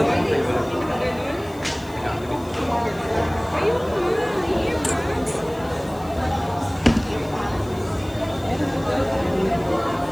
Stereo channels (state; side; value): noise; left; hiss, 24 dB below the sound